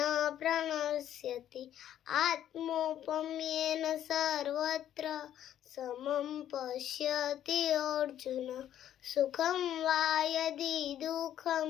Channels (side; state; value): right; quieter; 11.1 dB